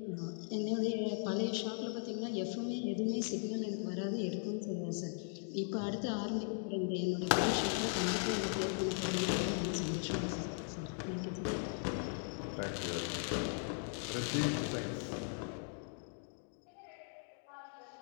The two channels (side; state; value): right; silent; 52 dB below the other